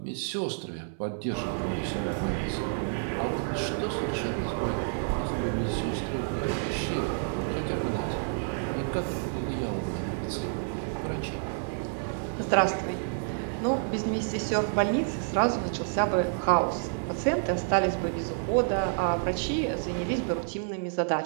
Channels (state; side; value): silent; left; 58 dB below the other